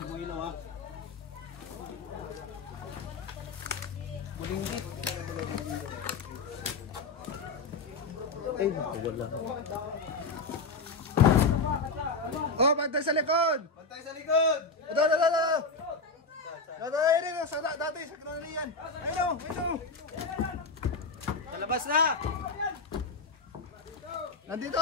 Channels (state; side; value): quieter; right; 3.8 dB